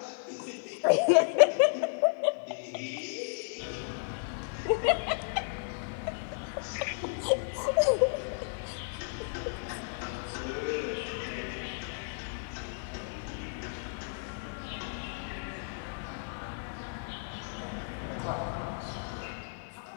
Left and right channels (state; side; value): silent; right; digital silence